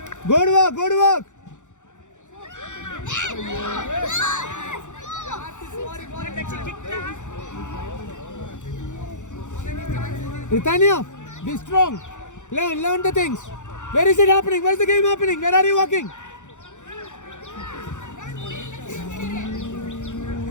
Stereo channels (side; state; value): right; late; 0.85 ms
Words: Good work. Ritania, be strong. Learn the things. Where is it happening? Where's the game happening? Where are you walking?